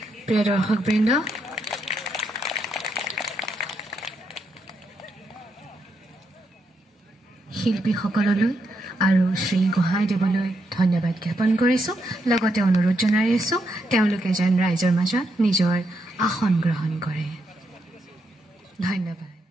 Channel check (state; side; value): normal; both; correlation 0.80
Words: প্ৰিয় দৰ্শকবৃন্দ শিল্পীসকললৈ আৰু শ্ৰী হোহai দেৱলৈ ধন্যবাদ জ্ঞাপন কৰিছোঁ লগতে অনুৰোধ জনাই আছোঁ তেওঁলোকে যেন ৰাইজৰ মাজত নিজৰ আসন গ্ৰহণ কৰে ধন্যবাদ